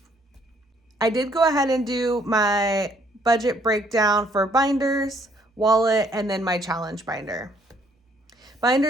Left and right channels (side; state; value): both; normal; correlation 0.66